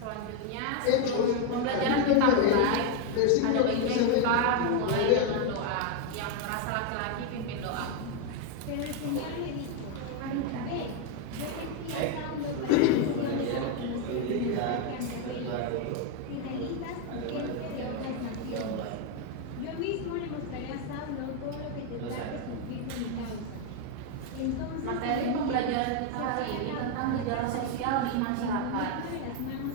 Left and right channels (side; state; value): both; different; correlation 0.01